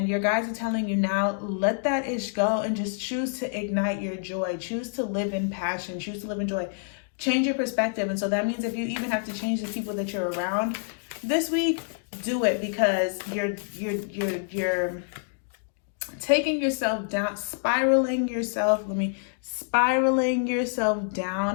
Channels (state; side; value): silent; right; digital silence